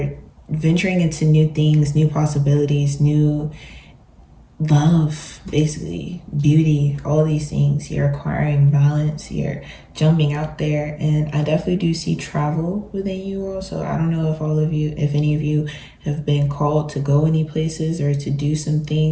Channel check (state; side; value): identical; both; correlation 1.00